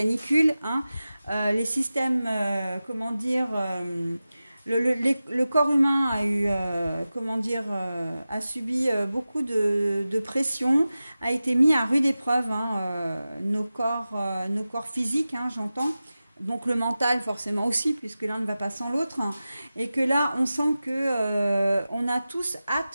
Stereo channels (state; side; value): inverted; both; correlation -0.95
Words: les systèmes, comment dire, le corps humain a eu, a subi beaucoup de pression, a été mis à rude épreuve, nos corps physiques, j'entends. Donc le mental forcément aussi, puisque l'un ne va pas sans l'autre, et que là on sent que on a tous